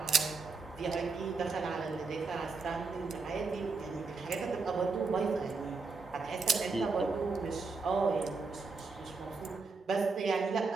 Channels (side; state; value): left; quieter; 4.4 dB